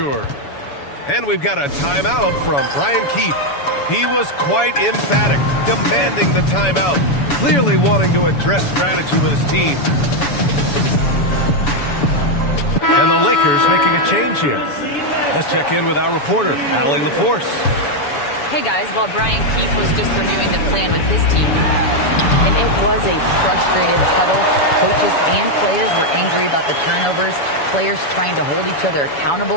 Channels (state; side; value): late; right; 7.0 ms